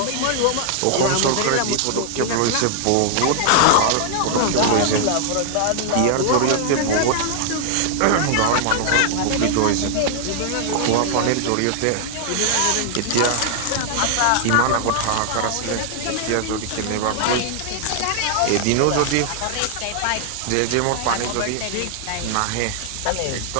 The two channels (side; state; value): both; different; correlation 0.00